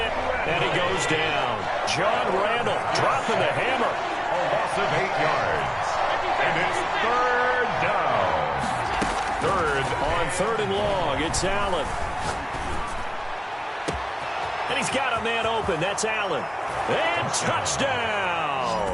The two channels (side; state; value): both; identical; correlation 1.00